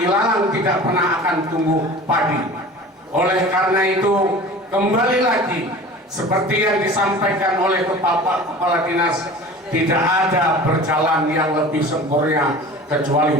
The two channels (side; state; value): both; normal; correlation 0.40